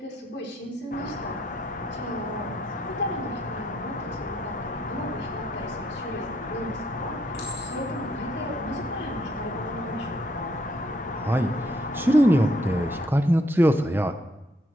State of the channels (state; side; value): normal; both; correlation 0.71